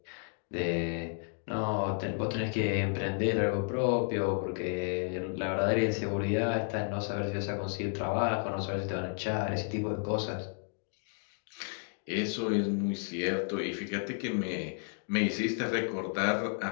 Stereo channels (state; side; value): silent; right; 56 dB below the other